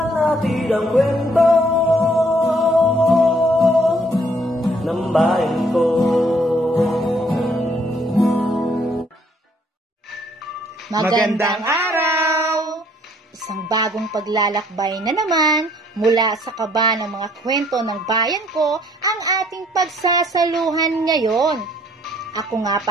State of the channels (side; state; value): both; normal; correlation 0.64